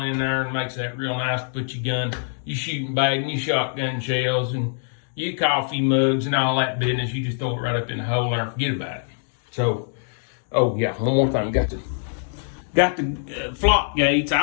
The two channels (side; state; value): right; silent; digital silence